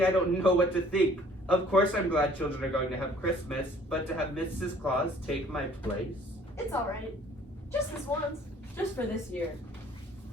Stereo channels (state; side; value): normal; both; correlation 0.56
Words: I don't know what to think. Of course I'm glad children are going to have Christmas, but to have Mrs. Claus take my place? It's alright. Just this once. Just for this year.